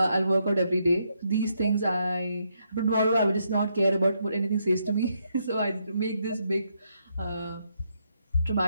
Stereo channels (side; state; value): both; inverted; correlation -0.77